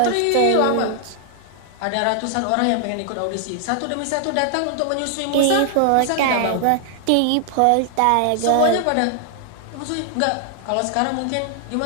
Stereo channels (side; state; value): both; different; correlation 0.00